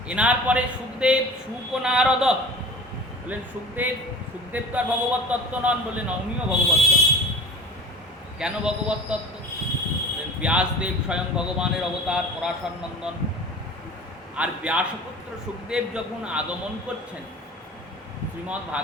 এনার পরে সুখদেব, সুক ও নারদ। বললেন সুখদেব তো আর ভগবত তত্ত্ব নন। বললেন উনিও ভগবত তত্ত্ব। কেন ভগবত তত্ত্ব? বললেন ব্যাসদেব স্বয়ং ভগবানের অবতার, পরাশর নন্দন। আর ব্যাসপুত্র সুখদেব যখন আগমন করছেন, শ্রীমদ্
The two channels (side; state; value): both; normal; correlation 0.39